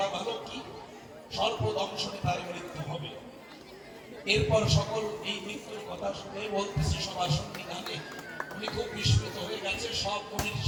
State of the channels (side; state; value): both; identical; correlation 1.00